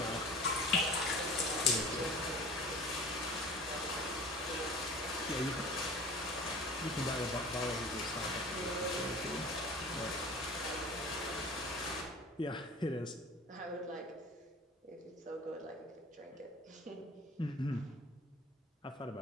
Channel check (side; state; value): both; normal; correlation 0.41